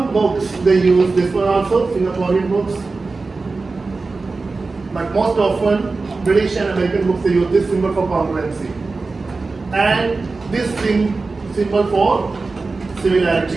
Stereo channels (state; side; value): quieter; left; 3.9 dB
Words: books they use this one also, Singaporean books. But most often, British and American books, they use this symbol for congruency. And this symbol for